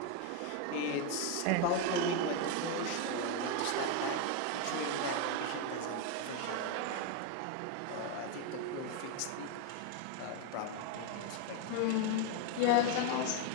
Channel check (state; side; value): different; both; correlation 0.02